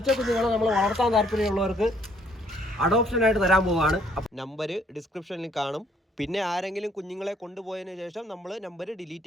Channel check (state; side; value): normal; both; correlation 0.65